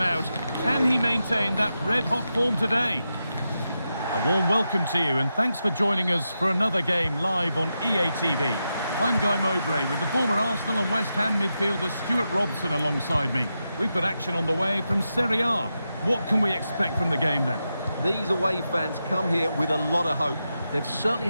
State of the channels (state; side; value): inverted; both; correlation -0.88